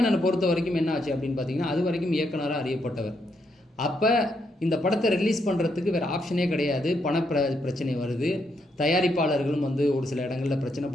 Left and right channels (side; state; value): both; normal; correlation 0.78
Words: பொறுத்த வரைக்கும் என்ன ஆச்சு அப்படின்னு பார்த்தீங்கன்னா, அது வரைக்கும் இயக்குனராக அறியப்பட்டவர். அப்போ இந்த படத்தை ரிலீஸ் பண்ணுறதுக்கு வேறு ஆப்ஷனே கிடையாது. பிரச்சனை வருது. தயாரிப்பாளர்களும் வந்து ஒரு சில இடங்களில் பிரச்சனை